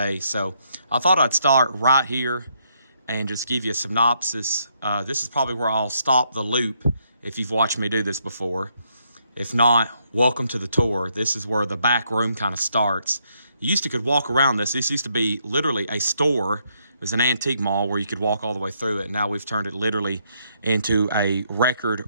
So I thought I'd start right here and just give you a synopsis. This is probably where I'll stop the loop if you've watched me do this before. If not, welcome to the tour. This is where the back room kind of starts. You used to could walk around this. This used to be literally a store. It was an antique mall where you could walk all the way through it. Now we've turned it literally into a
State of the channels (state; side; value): inverted; both; correlation -0.74